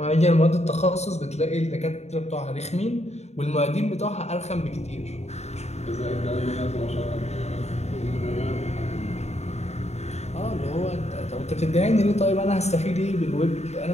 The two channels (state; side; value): late; right; 0.32 ms